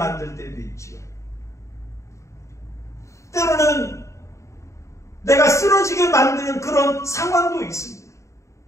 때도 있죠. 때로는 내가 쓰러지게 만드는 그런 상황도 있습니다.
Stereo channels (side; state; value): right; late; 0.14 ms